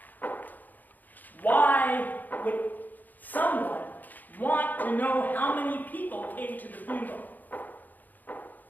Why would someone want to know how many people came to the funeral?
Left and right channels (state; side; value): late; right; 0.084 ms